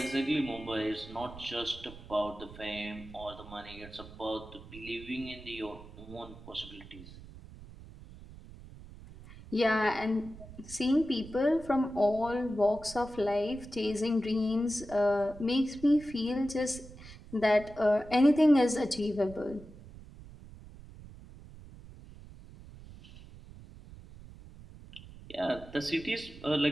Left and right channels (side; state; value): right; noise; rumble, 17 dB below the sound